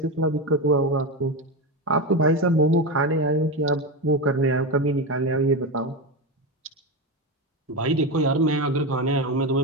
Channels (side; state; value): both; normal; correlation 0.16